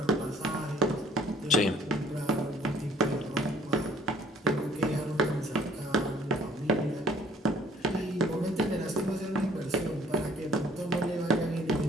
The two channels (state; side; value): normal; both; correlation 0.57